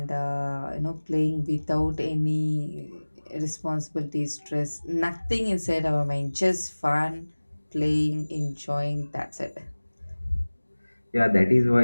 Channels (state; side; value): inverted; both; correlation -1.00